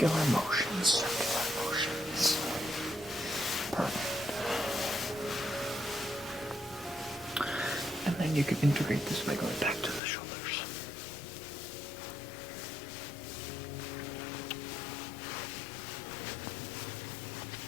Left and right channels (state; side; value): drops out; right; at 10.0 s